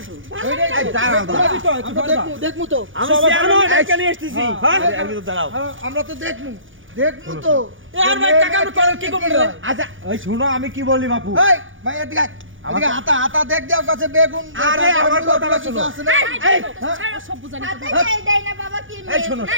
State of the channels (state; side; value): late; left; 0.57 ms